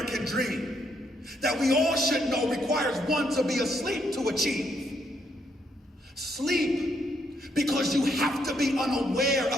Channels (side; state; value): both; normal; correlation 0.74